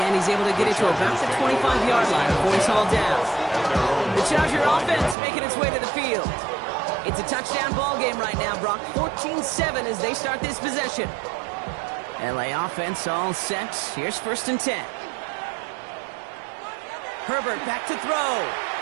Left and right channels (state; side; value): drops out; left; at 5.2 s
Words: end, he's able to get it to about the 25-yard line before he's hauled down. The Charger offense making its way to the field. It's a touchdown ball game right now, Brock. 14-7 as they start this possession. LA offense all set. Here's 1st and 10. Herbert back to throw.